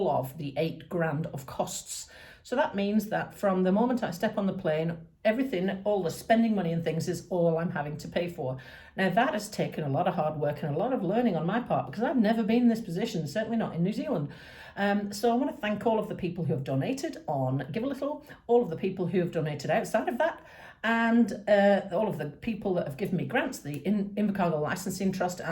of the 8 grand of costs. So that means that from the moment I step on the plane, everything, all the spending money and things is all I'm having to pay for. Now, that has taken a lot of hard work and a lot of learning on my part, because I've never been in this position, certainly not in New Zealand. So I want to thank all of the people who have donated on Give a Little, all of the people who have donated outside of that, and all of the people that have given me grants, the Invercargill Licensing Trust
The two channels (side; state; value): both; identical; correlation 1.00